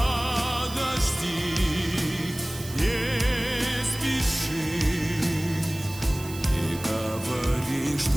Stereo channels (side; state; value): right; noise; hiss, 14 dB below the sound